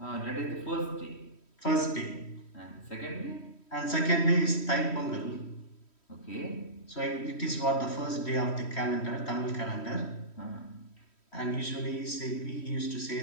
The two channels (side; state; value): right; late; 3.1 ms